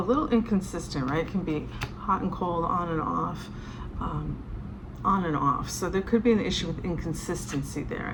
little inconsistent, right? Can be hot and cold, on and off. So there could be an issue with inconsistency there,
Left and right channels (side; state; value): both; identical; correlation 1.00